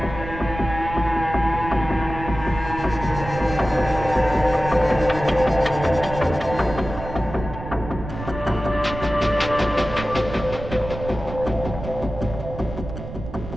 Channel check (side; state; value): right; noise; rumble, 10 dB below the sound